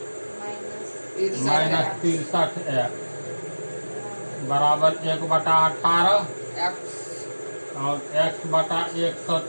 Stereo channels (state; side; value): inverted; both; correlation -1.00